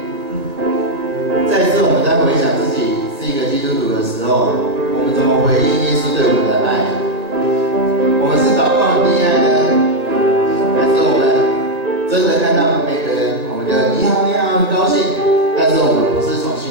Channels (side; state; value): left; late; 1.8 ms